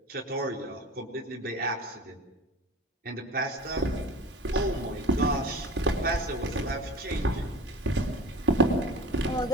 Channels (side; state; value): both; normal; correlation 0.40